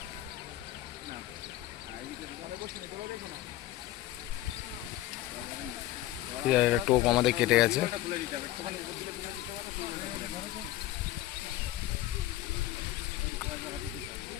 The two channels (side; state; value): right; quieter; 14.9 dB